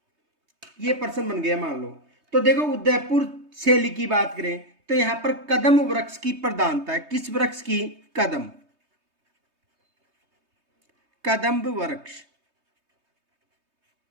ये प्रश्न बन गया मान लो। तो देखो उदयपुर शैली की बात करें तो यहां पर कदम वृक्ष की प्रधानता है। किस वृक्ष की? कदम्ब वृक्ष।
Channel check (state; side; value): late; left; 3.2 ms